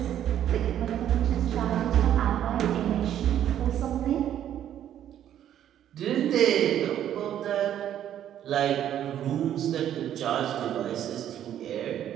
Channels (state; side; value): quieter; left; 10.8 dB